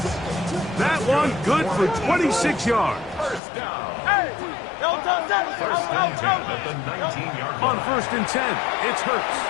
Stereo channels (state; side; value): drops out; right; at 3.4 s